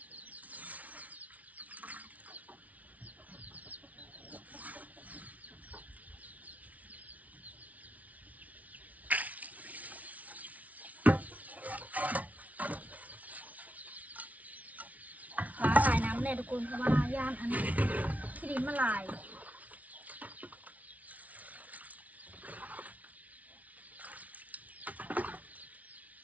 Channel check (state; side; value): late; left; 0.071 ms